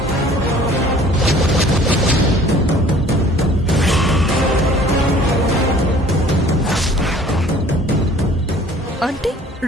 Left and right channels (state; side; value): normal; both; correlation 0.52